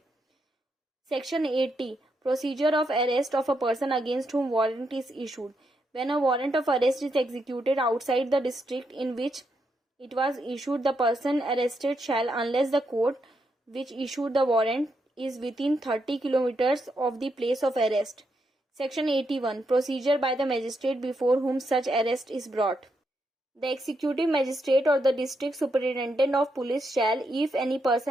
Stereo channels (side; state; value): both; normal; correlation 0.81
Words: Section 80 Procedure of arrest of a person against whom warrant is issued. When a warrant of arrest is executed outside the district in which it was issued, the person arrested shall, unless the court which issued the warrant is within 30 kilometers of the place of arrest. Section 81 Procedure by the magistrate before whom such arrest is brought. The executive magistrate or the district superintendent of police shall, if any